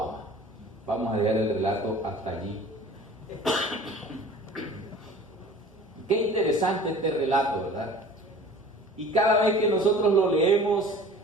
ama. Vamos a leer el relato hasta allí. Qué interesante este relato, ¿verdad? Y cada vez que nosotros lo leemos,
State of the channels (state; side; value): normal; both; correlation 0.44